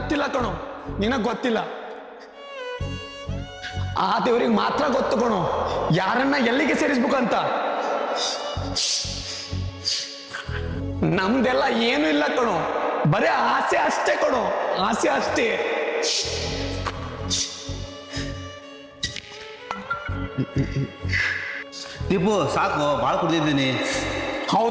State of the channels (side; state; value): both; identical; correlation 1.00